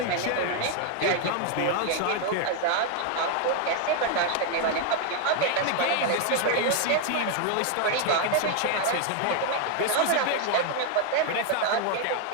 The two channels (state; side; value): different; both; correlation 0.01